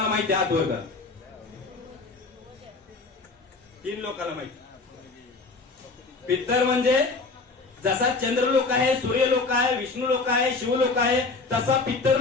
माहिती? हात वर करा. 3 लोकांना माहिती. पित्तर म्हणजे जसा चंद्रलोक आहे, सूर्यलोक आहे, विष्णू लोक आहे, शिवलोक आहे तसा पित्तर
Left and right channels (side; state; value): right; quieter; 3.9 dB